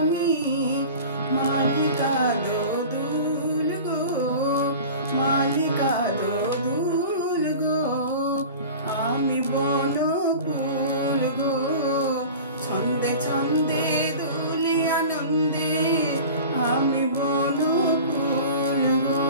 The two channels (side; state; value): both; inverted; correlation -0.37